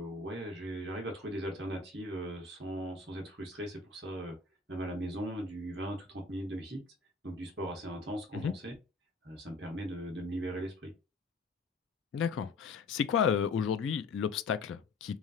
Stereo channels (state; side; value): quieter; right; 3.8 dB